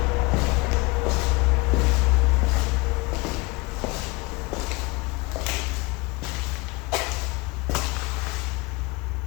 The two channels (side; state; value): right; quieter; 24.6 dB